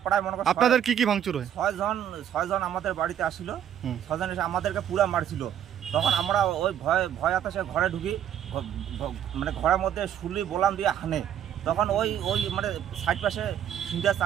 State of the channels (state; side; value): quieter; left; 9.9 dB